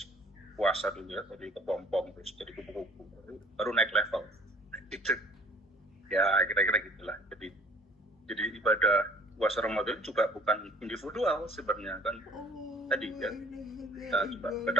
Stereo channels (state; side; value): normal; both; correlation 0.51